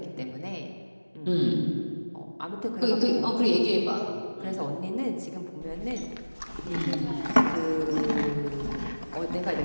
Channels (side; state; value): both; inverted; correlation -1.00